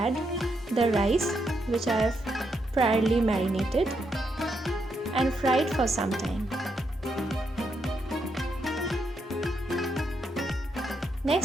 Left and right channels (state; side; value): normal; both; correlation 0.80